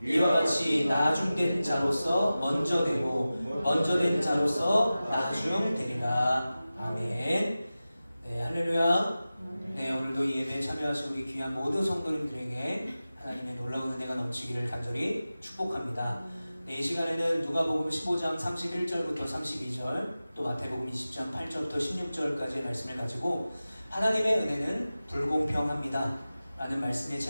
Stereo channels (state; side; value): inverted; both; correlation -0.95